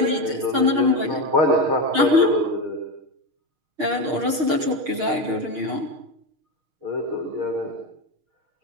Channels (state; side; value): late; left; 6.4 ms